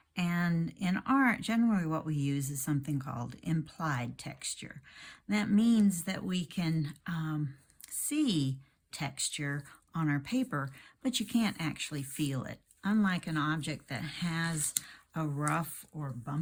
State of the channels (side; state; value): both; identical; correlation 1.00